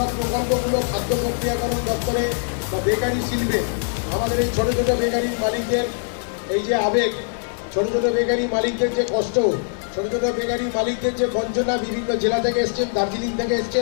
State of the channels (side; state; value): right; silent; digital silence